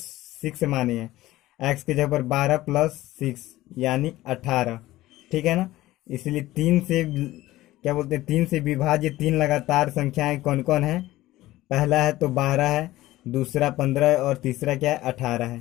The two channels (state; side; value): quieter; right; 16.6 dB